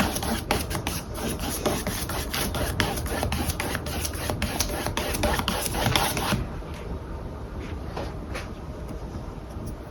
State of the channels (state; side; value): identical; both; correlation 1.00